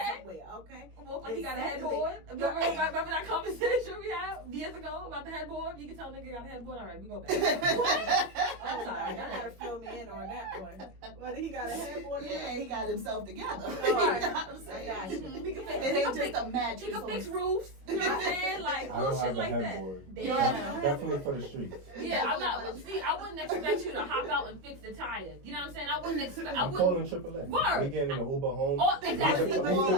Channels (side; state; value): left; late; 21 ms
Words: somewhere. Okay. Well, he got a headboard. Remember that conversation we had years ago about the headboard? You can tell a nigga got a headboard. All right, we go back. What? I'm sorry. Y'all gotta fill me in on that one. Whether he got a headboard or Yeah, he got himself together. Right. You know what I'm saying? I got you. We can fix It ain't just a match. You can fix roofs. You know what I'm saying? Like I little don't shit have a like headboard. that. Damn. Definitely for the streets. Yeah, I'm not. See, I wouldn't expect you to hop out and fix the tires. You know what I'm saying? I wouldn't expect. I I'm calling wouldn't. AAA. Word. We getting an Uber home. Oh, exactly. Leave the